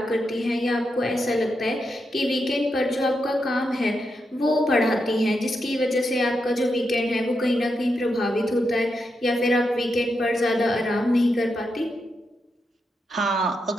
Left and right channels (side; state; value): both; normal; correlation 0.85